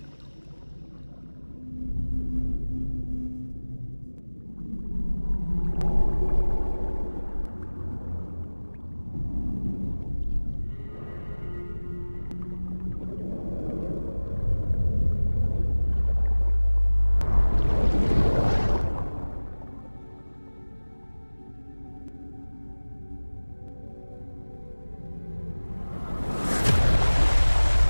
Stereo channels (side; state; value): both; inverted; correlation -1.00